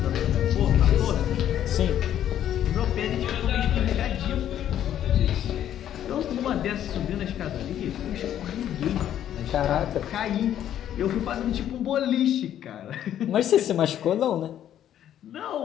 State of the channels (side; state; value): right; quieter; 10.9 dB